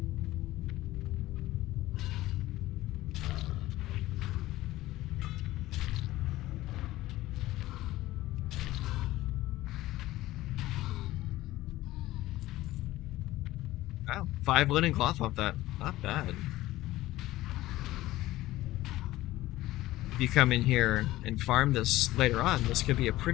Wow, 5 linen cloth off that. Not bad. If you come in here and farm this later on, this could be a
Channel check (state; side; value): quieter; right; 16.6 dB